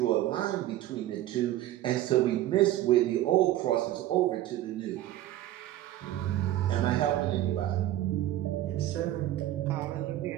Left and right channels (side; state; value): left; quieter; 14.1 dB